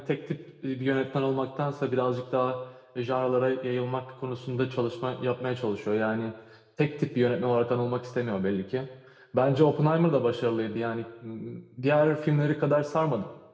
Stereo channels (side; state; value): both; identical; correlation 1.00